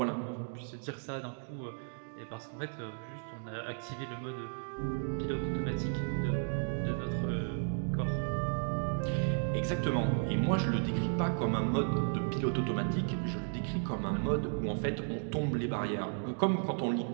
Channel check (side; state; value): left; silent; 55 dB below the other